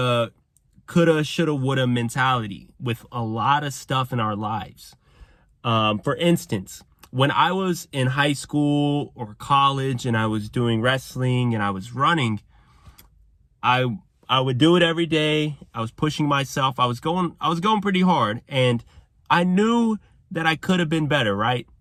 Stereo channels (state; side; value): identical; both; correlation 1.00